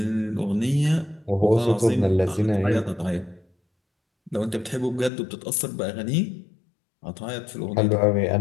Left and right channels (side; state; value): right; drops out; at 5.1 s